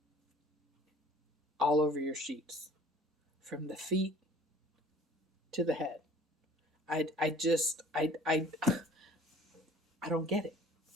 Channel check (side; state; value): both; normal; correlation 0.50